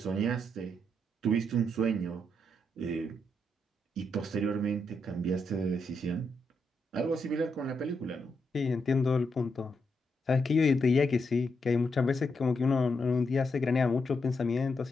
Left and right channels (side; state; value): both; normal; correlation 0.81